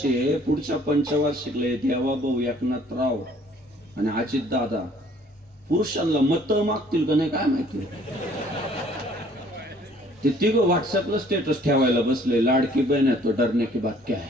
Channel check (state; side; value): normal; both; correlation 0.58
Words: आहे, पुढच्या पंचवार्षिकला देवाभाऊ एकनाथराव आणि अजित दादा पुरुषांना मत मागतील का नाही काय माहिती. ते तिघं व्हॉट्सअपला स्टेटस ठेवायला बसले, लाडकी बहन है तो डरने की बात क्या